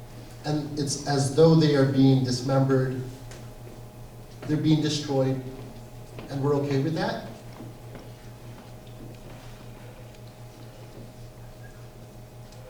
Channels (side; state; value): both; identical; correlation 1.00